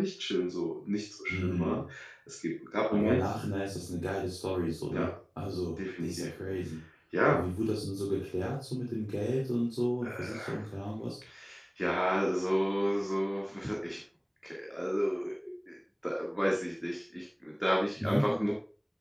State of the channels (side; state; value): both; identical; correlation 1.00